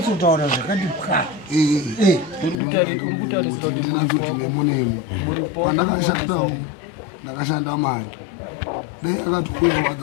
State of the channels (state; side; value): drops out; right; at 2.6 s